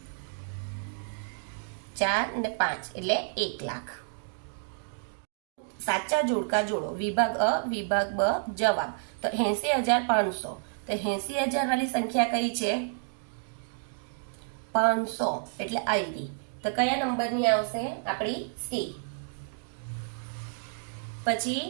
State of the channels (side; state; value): left; silent; digital silence